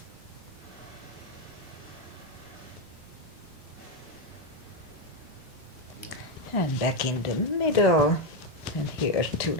And back in the middle, and here too,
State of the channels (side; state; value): both; normal; correlation 0.06